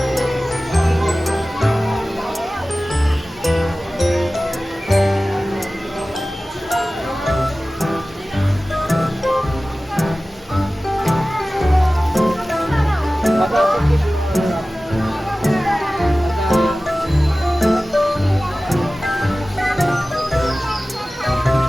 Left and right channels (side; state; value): both; normal; correlation 0.97